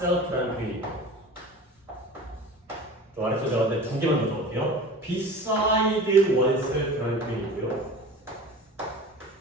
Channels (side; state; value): both; normal; correlation 0.37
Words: 표현이 있고요. 또 아래서 적었는데 두 개만 더 적을게요. beside oneself라는 표현이 있고요.